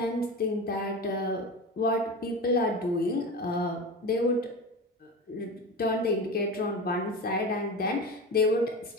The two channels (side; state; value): both; normal; correlation 0.27